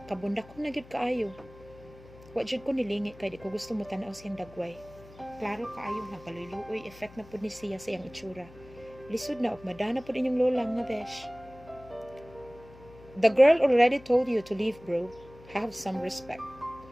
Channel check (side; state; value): left; noise; hum, 21 dB below the sound